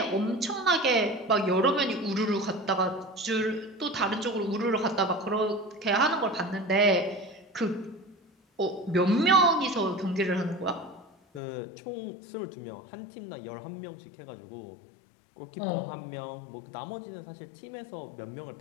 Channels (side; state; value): right; drops out; at 11.4 s